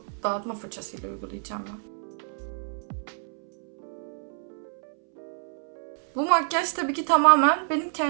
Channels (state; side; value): silent; left; 60 dB below the other